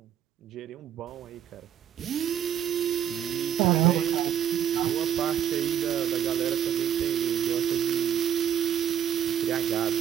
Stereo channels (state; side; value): quieter; left; 9.7 dB